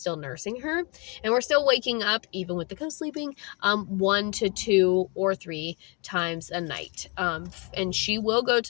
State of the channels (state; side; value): quieter; right; 31.9 dB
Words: nursing her. And we're still waking up, even with the co-sleeping, 1 to 2 or 3 times a night. And she will go